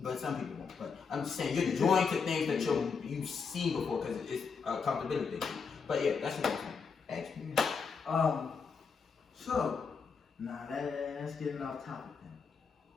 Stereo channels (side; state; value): right; quieter; 5.5 dB